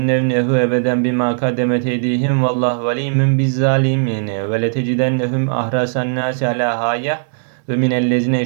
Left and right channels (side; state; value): left; silent; 63 dB below the other